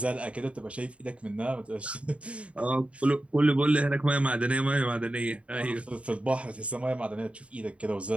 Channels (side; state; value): left; late; 0.062 ms